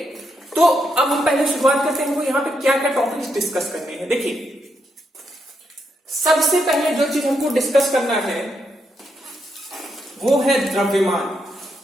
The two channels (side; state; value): both; normal; correlation 0.80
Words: तो अब हम पहले शुरुआत करते हैं। यहाँ पे क्या क्या टॉपिक्स डिस्कस करने हैं। देखिए, सबसे पहले जो चीज हमको डिस्कस करना है वो है द्रव्यमान।